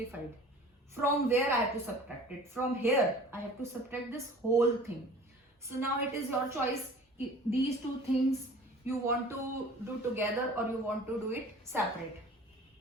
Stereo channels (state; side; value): normal; both; correlation 0.45